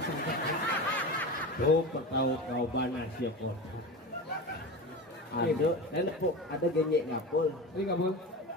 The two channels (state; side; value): normal; both; correlation 0.27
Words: tuh ketahu kau bana siap kotak ada genyek ngapul ini ngapul